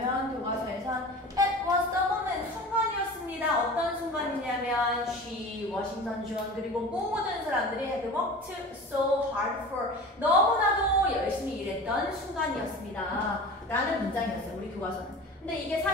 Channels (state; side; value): normal; both; correlation 0.36